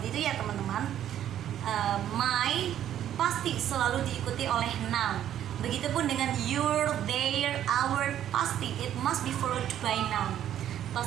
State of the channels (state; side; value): quieter; left; 11.0 dB